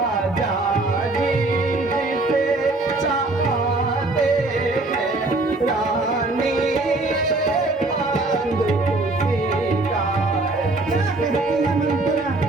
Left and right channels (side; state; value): left; quieter; 3.0 dB